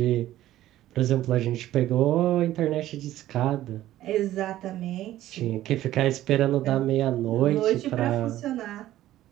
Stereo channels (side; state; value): left; quieter; 14.0 dB